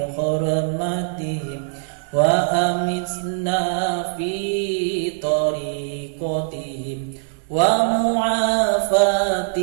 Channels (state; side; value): silent; left; digital silence